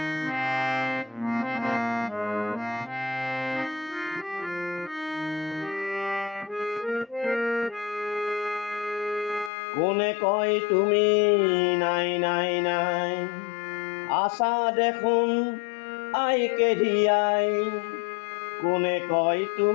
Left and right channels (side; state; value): right; drops out; at 9.5 s